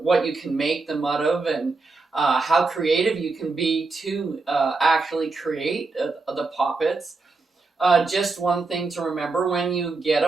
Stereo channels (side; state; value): left; quieter; 3.8 dB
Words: you can make them out of, and how creative you can be to actually create the poppets. Just one thing to remember when you get